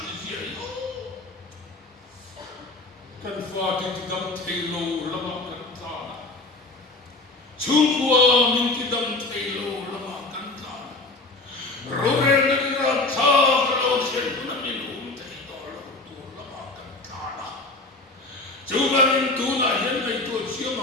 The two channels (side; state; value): right; quieter; 3.1 dB